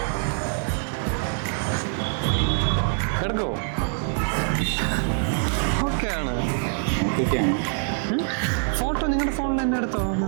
എടുക്കോ? ഓക്കെ ആണ്. ഫോട്ടോ നിങ്ങളുടെ ഫോണിൽ തന്നെ എടുത്തോ.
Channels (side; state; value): left; silent; 62 dB below the other